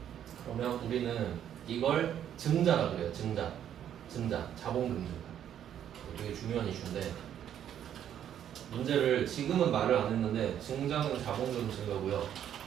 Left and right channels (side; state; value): left; quieter; 10.0 dB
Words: 그러면 우리는 이걸 증자라 그래요. 증자. 자본금 증가. 되게 중요한 이슈인데, 문제를 지금은 말을 안 했는데 증자는 자본금 증가고요.